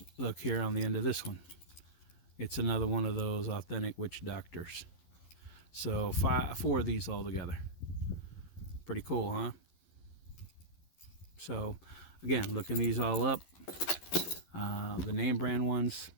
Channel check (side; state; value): right; late; 11 ms